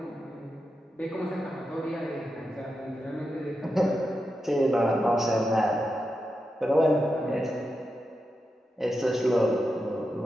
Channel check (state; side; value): normal; both; correlation 0.88